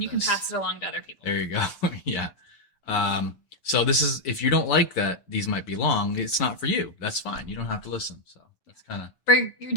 you can this. pass it along to other people. There you go. Yeah. So this is, if you don't like that these might be long, it's not for you. That's fine. You don't have to listen. So that's kind of But you're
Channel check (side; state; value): right; late; 6.9 ms